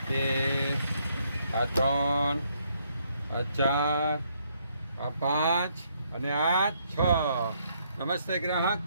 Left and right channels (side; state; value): both; inverted; correlation -0.72